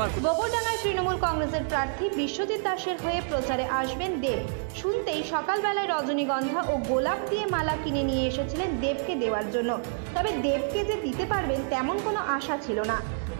আর গোবরডাঙ্গায় তৃণমূল কংগ্রেসের প্রার্থী বিশ্বজিৎ দাসের হয়ে প্রচারে আসবেন দেব। শুনতেই সকালবেলায় রজনীগন্ধা ও গোলাপ দিয়ে মালা কিনে নিয়ে এসেছিলেন দেবকে দেওয়ার জন্য। তবে দেবকে যে দিতে পারবেন তেমন কোনো আশা ছিল না।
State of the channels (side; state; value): left; silent; digital silence